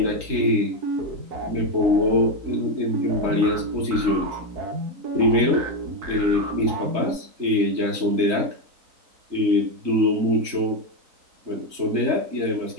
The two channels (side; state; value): left; late; 3.9 ms